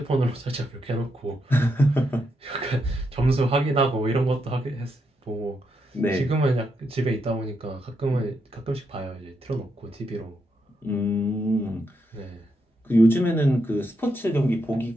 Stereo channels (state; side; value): normal; both; correlation 0.81